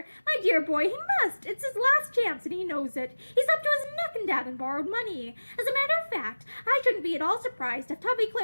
My dear boy, he must. It's his last chance, and he knows it. He's up to his neck in debt and borrowed money. As a matter of fact, I shouldn't be at all surprised if Tubby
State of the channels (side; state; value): both; inverted; correlation -1.00